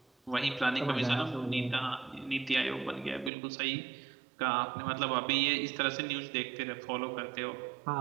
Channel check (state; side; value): drops out; left; at 3.3 s